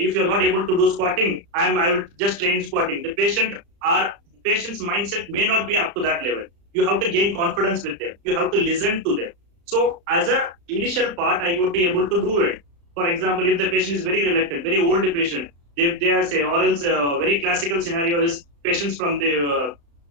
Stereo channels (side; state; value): left; late; 35 ms